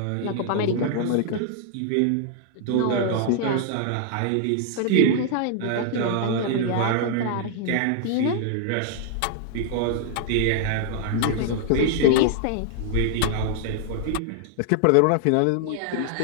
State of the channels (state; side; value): different; both; correlation -0.01